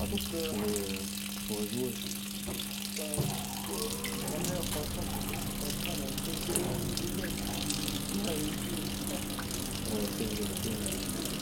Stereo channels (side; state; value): both; identical; correlation 1.00